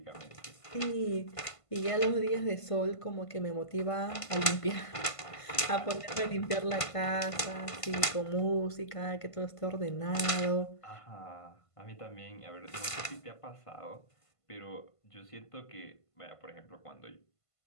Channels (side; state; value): right; late; 1.5 ms